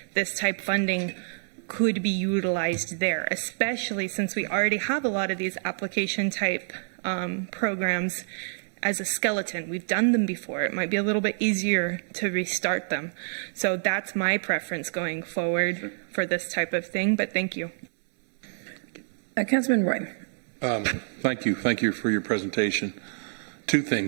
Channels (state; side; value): silent; left; 59 dB below the other